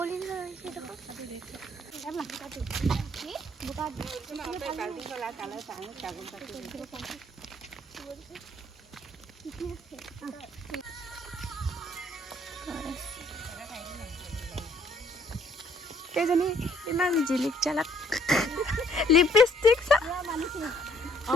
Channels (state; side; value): normal; both; correlation 0.64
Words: হৈছে কেইজনী ইমান জিলিক জালাক লিপষ্টিক